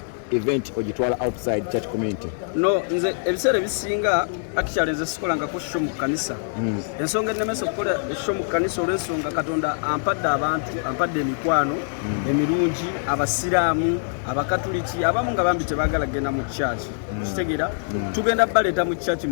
event ogitwala outside church community? No, nze ebiseera ebisinga actually nze sikolangako show mu kanisa. Ensonga ennemesa okukola show mu kanisa olw'ensonga Katonda ampadde abantu, ampadde emikwano emirungi, abasiraamu, abakatuliki, abamu nga bambi tebaagala kugenda mu church. Kitegeera? Tugenda baleeta mu church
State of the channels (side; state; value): right; silent; digital silence